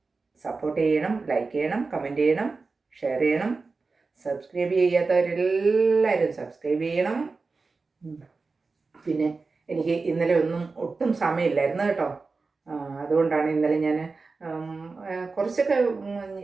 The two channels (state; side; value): quieter; left; 4.1 dB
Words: സപ്പോർട്ട് ചെയ്യണം, ലൈക്ക് ചെയ്യണം, കമൻറ്റ് ചെയ്യണം, ഷെയർ ചെയ്യണം. സബ്സ്ക്രൈബ് ചെയ്യാത്തവരെല്ലാവരും സബ്സ്ക്രൈബ് ചെയ്യണം. പിന്നെ എനിക്ക് ഇന്നലെ ഒട്ടും സമയമില്ലായിരുന്നു കേട്ടോ. അതുകൊണ്ടാണ് ഇന്നലെ ഞാൻ കുറച്ചൊക്കെ